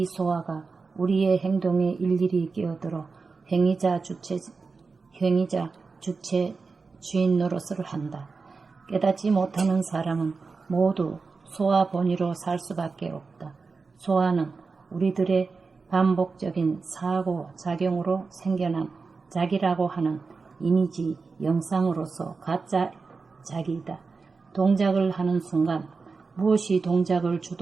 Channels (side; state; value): left; quieter; 4.4 dB